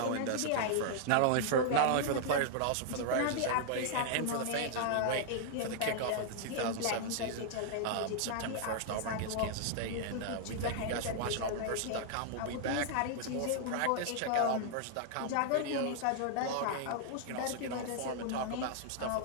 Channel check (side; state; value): both; different; correlation -0.01